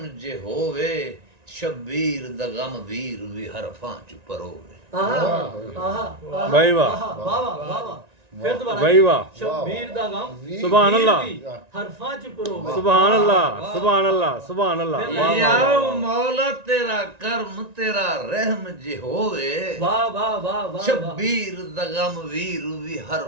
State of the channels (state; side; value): late; left; 1.9 ms